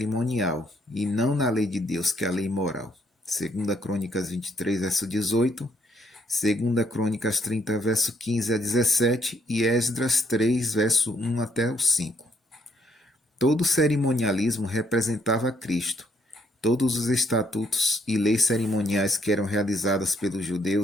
e não na lei de Deus, que é a lei moral. 2 Crônicas 23, verso 18, 2 Crônicas 30, verso 15 a 17 e Esdras 3, verso 1 até o 5. Todo cerimonialismo representava Cristo. Todos os estatutos e leis cerimoniais que eram realizadas pelos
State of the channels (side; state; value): both; normal; correlation 0.71